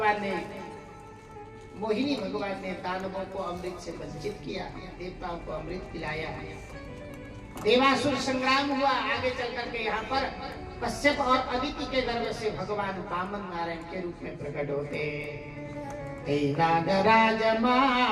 ने मोहिनी भगवान ने दानवों को अमृत से वंचित किया, देवताओं को अमृत पिलाया। देवासुर संग्राम हुआ। आगे चल करके यहाँ पर कश्यप और अदिति के गर्भ से भगवान वामन नारायण के रूप में प्रकट होते। नागराज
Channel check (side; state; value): both; identical; correlation 1.00